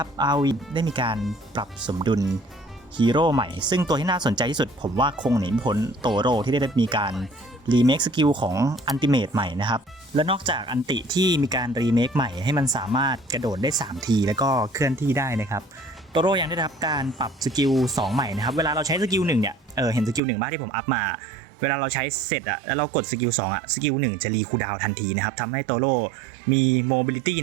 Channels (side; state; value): left; drops out; at 20.2 s